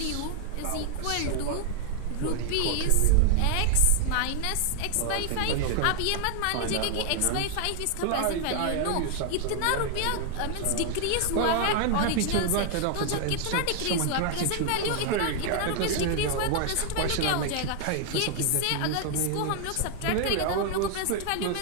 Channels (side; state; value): both; different; correlation 0.00